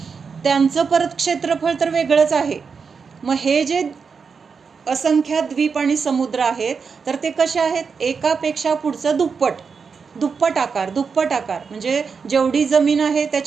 त्यांचं परत क्षेत्रफळ तर वेगळंच आहे. मग हे जे असंख्यात द्वीप आणि समुद्र आहेत, तर ते कसे आहेत, एकापेक्षा पुढचं दुप्पट आकार म्हणजे जेवढी जमीन आहे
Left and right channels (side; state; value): left; quieter; 5.6 dB